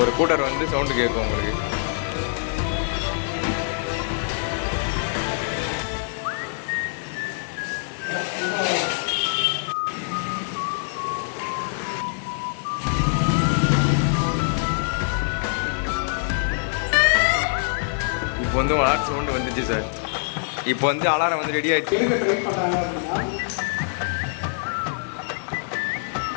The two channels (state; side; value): silent; right; digital silence